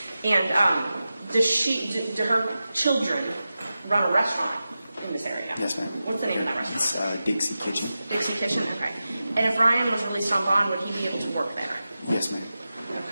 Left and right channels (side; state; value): both; inverted; correlation -0.93